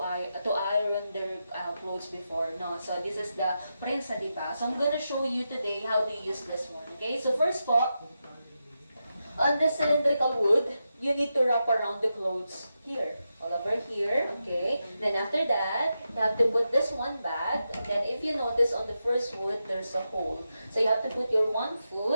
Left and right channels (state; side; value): inverted; both; correlation -0.88